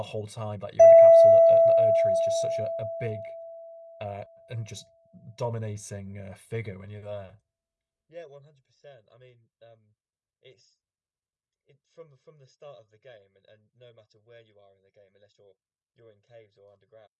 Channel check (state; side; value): identical; both; correlation 1.00